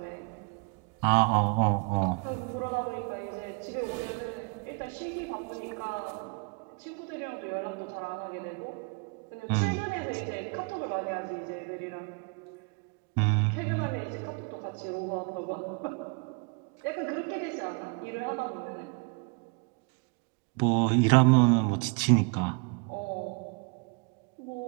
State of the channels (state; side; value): quieter; left; 34.4 dB